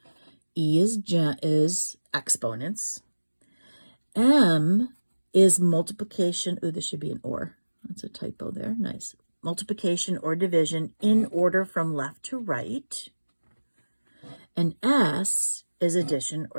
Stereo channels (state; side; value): inverted; both; correlation -1.00